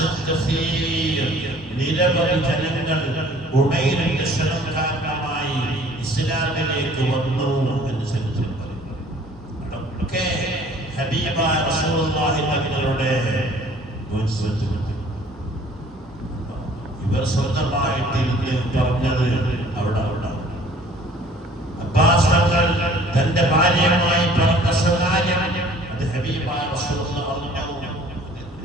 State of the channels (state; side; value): normal; both; correlation 0.53